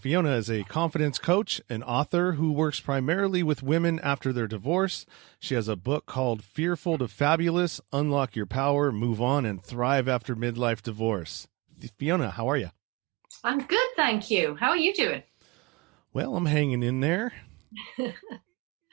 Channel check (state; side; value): quieter; left; 24.0 dB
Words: is a confidence coach and author who works primarily with women after their divorce. She has a book called Fearful to Fabulous, Unlock Your Power, Move On, and Thrive After Midlife Divorce. Fiona, how are you? I'm good, thank you. How are you doing? Well, I'm hanging in there,